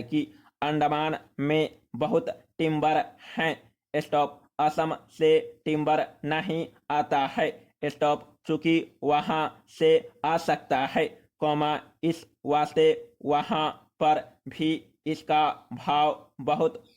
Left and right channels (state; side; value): identical; both; correlation 1.00